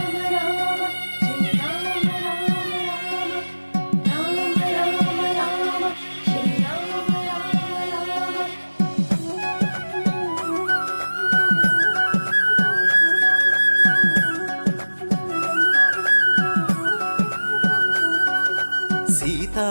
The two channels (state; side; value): inverted; both; correlation -1.00